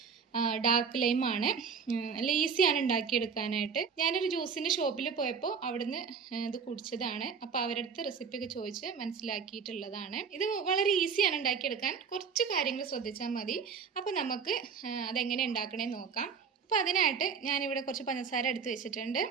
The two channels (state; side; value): quieter; left; 6.1 dB